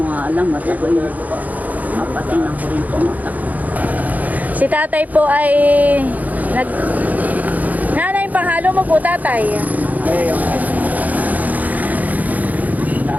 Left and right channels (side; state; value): left; late; 0.078 ms